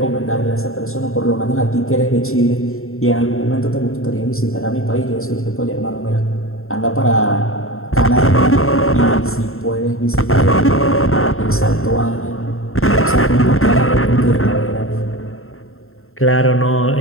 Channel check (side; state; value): right; late; 0.62 ms